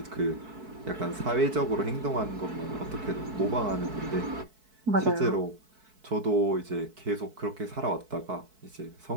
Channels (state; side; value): late; left; 4.6 ms